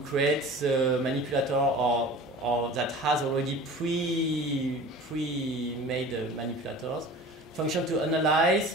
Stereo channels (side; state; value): both; normal; correlation 0.40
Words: create the manipulator or that has already pre-made manipulators. Function to